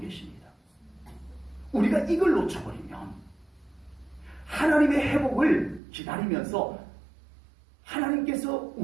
우리가 이걸 놓쳐버리면 하나님의 회복을 기다리면서 하나님께서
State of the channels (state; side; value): drops out; left; at 5.8 s